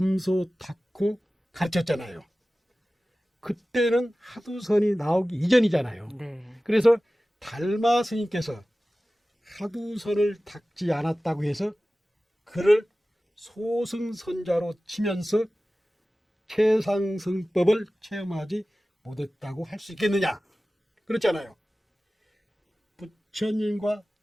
닦고 가르쳤잖아요. 그때는 하두선이 나오기 이전이잖아요. 네. 그래서 달마 스님께서 하두선을 닦지 않았다고 해서 그를 소승선자로 치면서 최상승법을 체험하지 못했다고 할 수 있겠느냐? 그렇잖아요. 부처님과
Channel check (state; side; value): normal; both; correlation 0.96